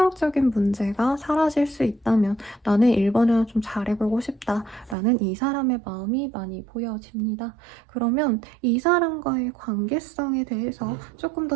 문제가 사라질 수 있다면 나는 1번을 좀 잘해보고 싶다라는 이 사람의 마음이 많이 보여집니다. 그러면 이 사람과의 관계성에 대해서 조금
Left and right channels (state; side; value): drops out; left; at 5.0 s